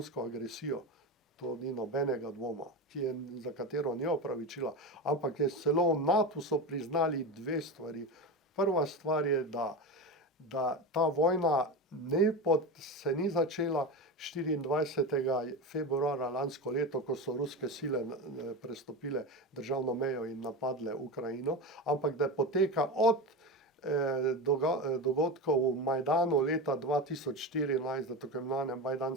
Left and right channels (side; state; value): both; normal; correlation 0.22